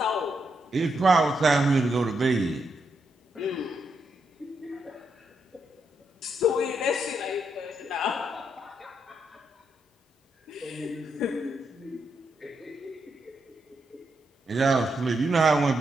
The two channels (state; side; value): normal; both; correlation 0.81